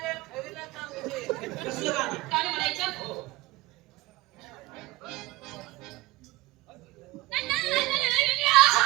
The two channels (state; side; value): quieter; left; 20.1 dB